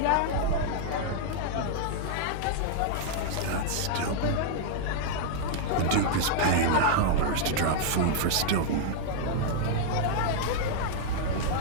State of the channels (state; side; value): different; both; correlation -0.01